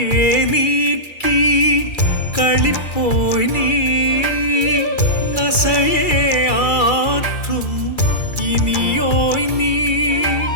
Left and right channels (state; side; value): late; right; 2.3 ms